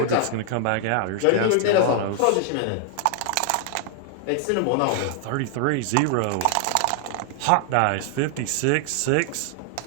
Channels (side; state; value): both; different; correlation 0.00